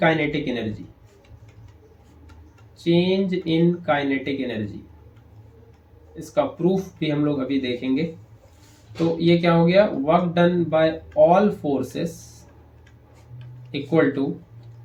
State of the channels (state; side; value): identical; both; correlation 1.00